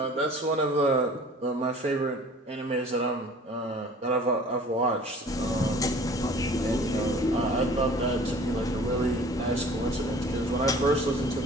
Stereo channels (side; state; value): both; normal; correlation 0.48